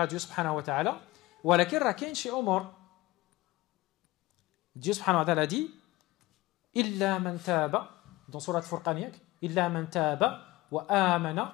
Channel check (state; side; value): quieter; right; 19.4 dB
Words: Dieu subhanahu wa ta'ala. Walakin راه كاين شي أمور. Dieu subhanahu wa ta'ala dit إلا من تاب dans سورة فرقان إلا من تاب وآمن